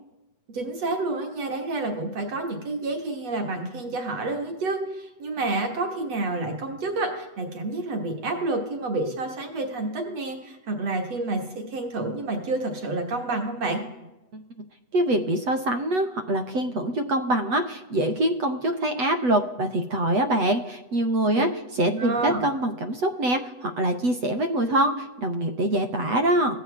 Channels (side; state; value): left; late; 8.1 ms